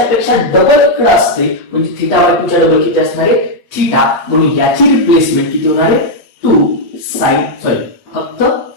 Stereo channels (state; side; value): late; right; 8.3 ms